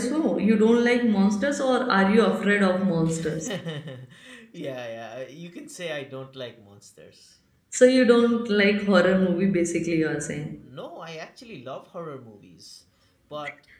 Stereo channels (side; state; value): both; identical; correlation 1.00